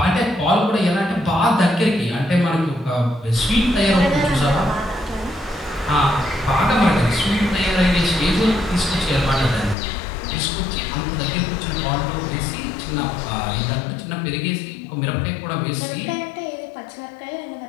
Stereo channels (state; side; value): drops out; right; at 9.8 s